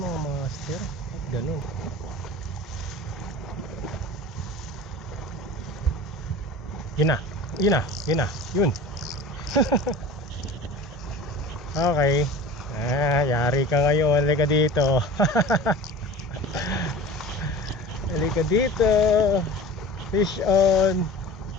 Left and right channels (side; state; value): both; normal; correlation 0.38